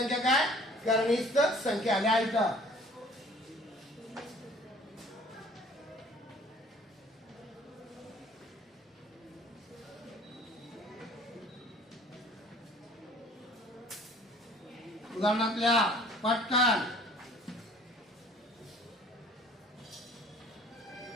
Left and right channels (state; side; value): normal; both; correlation 0.52